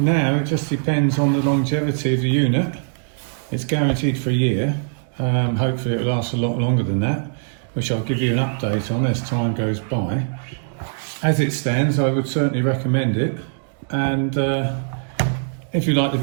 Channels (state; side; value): silent; left; digital silence